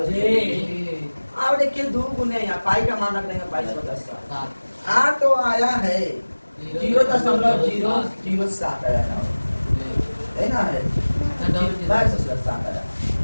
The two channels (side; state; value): both; inverted; correlation -1.00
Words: बच्चों? अब देखिए दो गुने यहाँ पाई का मान रख देंगे 22/7। आ तो आया है 0.007 आया ना है 22/7 आया।